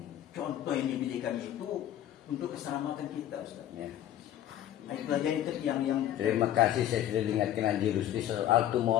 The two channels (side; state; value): right; quieter; 11.8 dB